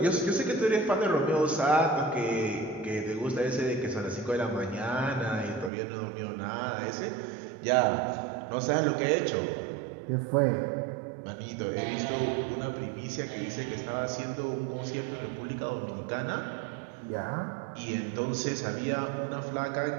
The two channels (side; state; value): left; drops out; at 5.7 s